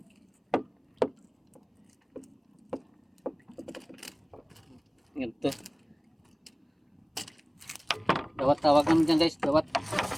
Ganito. Dawat tawag namin dyan guys, dawat.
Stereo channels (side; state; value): both; identical; correlation 1.00